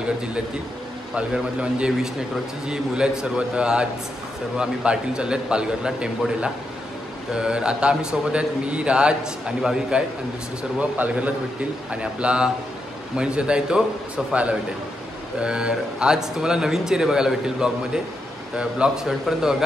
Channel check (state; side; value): normal; both; correlation 0.84